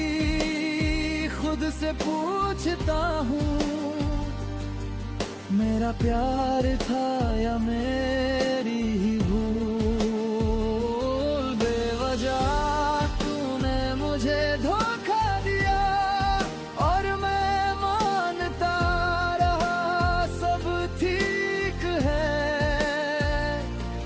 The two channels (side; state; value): both; identical; correlation 1.00